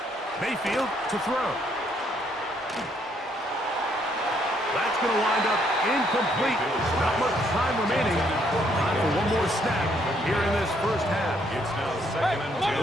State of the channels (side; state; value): both; normal; correlation 0.70